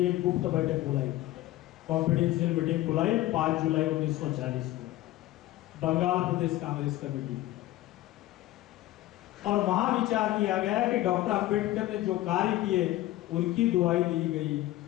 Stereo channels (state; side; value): quieter; right; 15.9 dB